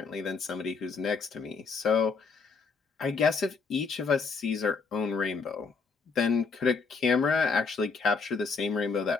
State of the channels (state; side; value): quieter; right; 4.8 dB